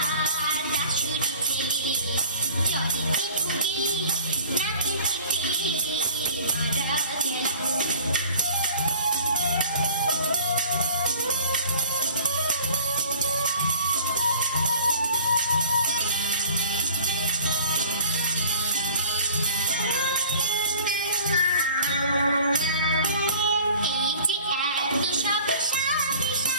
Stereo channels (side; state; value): both; inverted; correlation -0.49